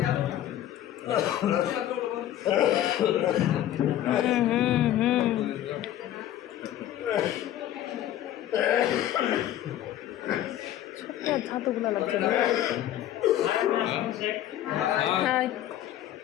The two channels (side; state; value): right; quieter; 12.3 dB